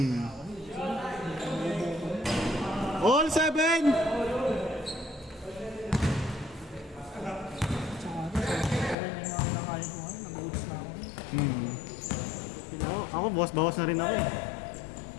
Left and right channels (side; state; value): right; drops out; at 9.0 s